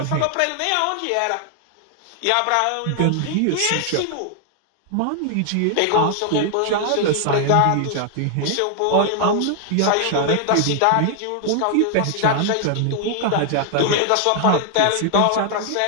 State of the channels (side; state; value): both; different; correlation 0.00